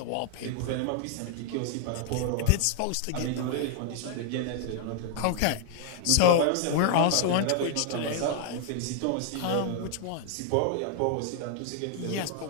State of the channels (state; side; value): different; both; correlation 0.00